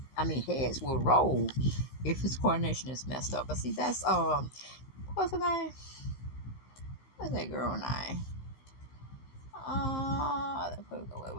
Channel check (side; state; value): right; late; 16 ms